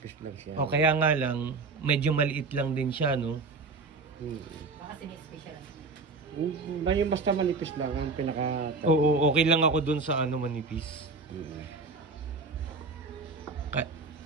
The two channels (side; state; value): left; quieter; 3.9 dB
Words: lang siya. O kaya nga lang, medyo maliit lang din siya, no? Baka sinispesyal. Yung basta manipis lang ang pinaka... Oo, okay lang ako dun sa ano manipis.